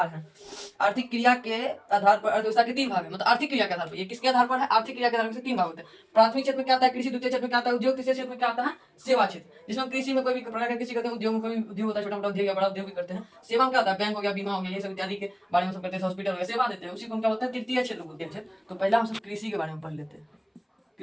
हैं, आर्थिक क्रिया के आधार पर अर्थव्यवस्था के तीन भाग है। मतलब आर्थिक क्रिया के आधार पर, ये किसके आधार पर है, आर्थिक क्रिया के आधार पर तीन भाग होते हैं। प्राथमिक क्षेत्र में क्या आता है, कृषि। द्वितीय क्षेत्र में क्या आता है, उद्योग। तीसरे क्षेत्र में क्या आता है, सेवा क्षेत्र। जिसमें कृषि में कोई भी प्रकार का कृषि करते हैं, उद्योग में कोई उद्योग होता है, छोटा मोटा उद्योग या बड़ा उद्योग भी करते हैं। सेवा में क्या होता है, बैंक हो गया, बीमा हो गया, ये सब इत्यादि के बारे में सब करते हैं। हॉस्पिटल हो गया, सेवा देते हैं, उसी को हम क्या बोलते हैं, तृतीय क्षेत्र बोलते हैं। तो पहला हम सब कृषि के बारे में पढ़ लेते हैं।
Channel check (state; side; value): identical; both; correlation 1.00